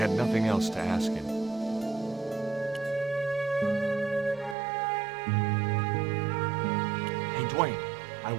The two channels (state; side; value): drops out; left; at 4.5 s